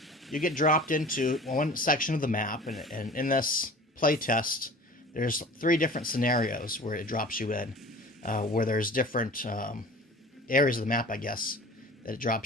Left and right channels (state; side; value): normal; both; correlation 0.42